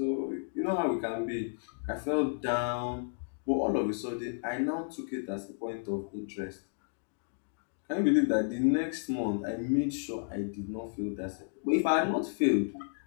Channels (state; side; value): silent; right; digital silence